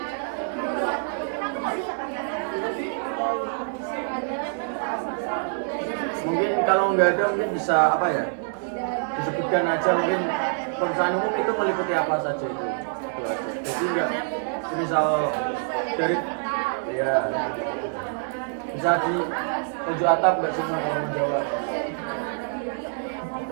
Mungkin kalau nggak ada mungkin bisa apa ya, disebutkan aja mungkin pemeriksaan umum itu meliputi apa saja itu aja. Jadi nggak misal dari ya bisa di tunjuk atap nggak semua kalau menjawab.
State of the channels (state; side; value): silent; left; 61 dB below the other